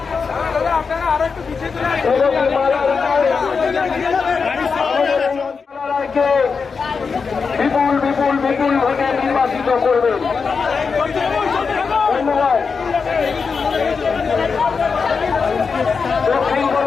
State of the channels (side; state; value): right; quieter; 5.3 dB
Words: বিপুল বিপুল বিপুল ভোটে নির্বাচিত করবেন। ধন্যবাদ। দক্ষিণ